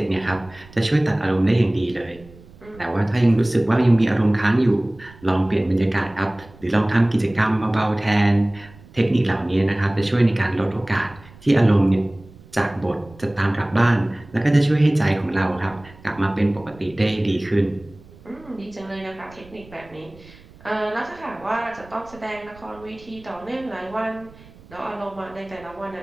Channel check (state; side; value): noise; right; rumble, 23 dB below the sound